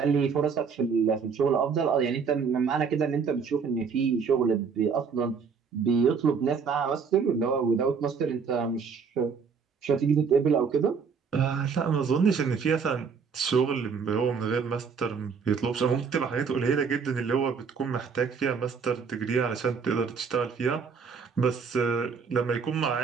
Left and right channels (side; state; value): left; quieter; 5.9 dB